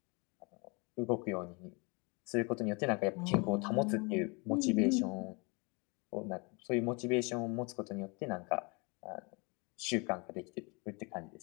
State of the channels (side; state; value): right; quieter; 30.6 dB